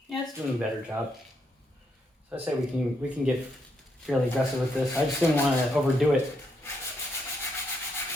Yeah, it's doing a better job. So I say we can get fairly aggressive with this. I just didn't want to overdo it.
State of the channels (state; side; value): normal; both; correlation 0.78